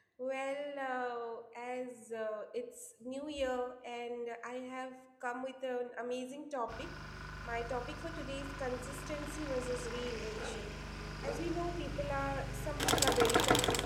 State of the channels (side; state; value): both; identical; correlation 1.00